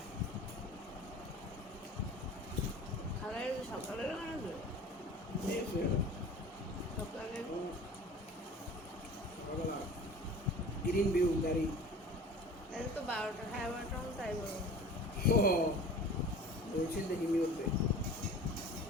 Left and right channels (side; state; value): both; normal; correlation 0.41